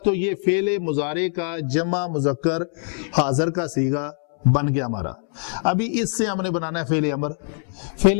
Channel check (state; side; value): silent; right; 64 dB below the other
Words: تو یہ فعل مضارع کا جمع مذکر حاضر کا صیغہ بن گیا ہمارا۔ ابھی اس سے ہم نے بنانا ہے فعل امر۔